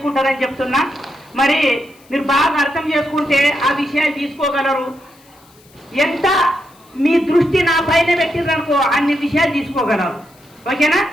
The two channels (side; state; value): left; noise; hiss, 29 dB below the sound